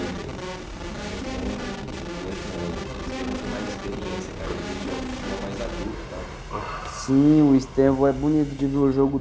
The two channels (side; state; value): both; identical; correlation 1.00